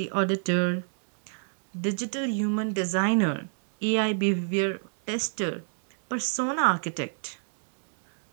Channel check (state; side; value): silent; left; digital silence